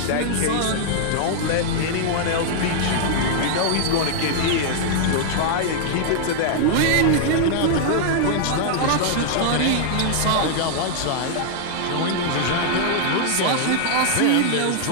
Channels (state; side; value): different; both; correlation -0.01